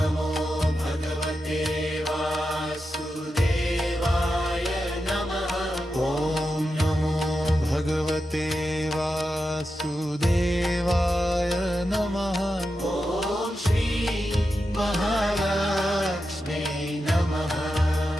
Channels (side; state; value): both; normal; correlation 0.89